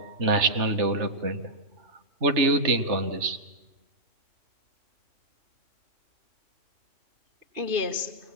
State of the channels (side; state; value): left; late; 3.3 ms